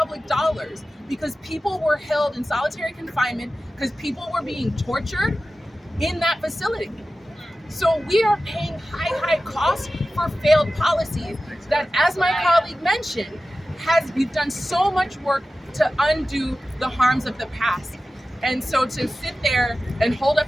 dollars because people were held in solitary confinement because people were being tortured in that facility. So we are paying high costs for failed policies that, as my colleague mentioned, we've done so much work to undo the harms of the past. And so to sit there and hold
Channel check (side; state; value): both; normal; correlation 0.95